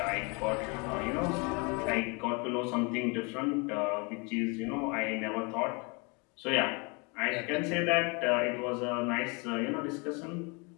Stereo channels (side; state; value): right; quieter; 31.1 dB